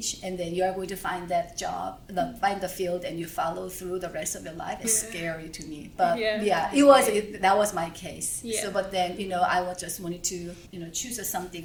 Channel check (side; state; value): both; identical; correlation 1.00